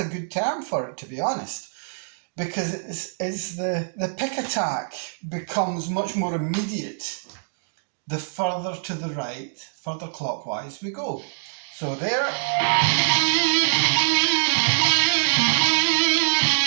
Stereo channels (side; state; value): left; silent; digital silence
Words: good term for it, to be honest, because it's the pick attack becomes much more immediate the further to the right, further clockwise we go. So there.